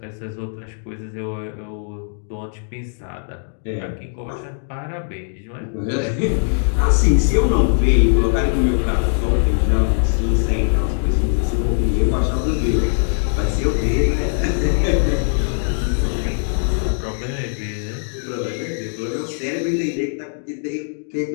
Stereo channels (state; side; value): silent; right; digital silence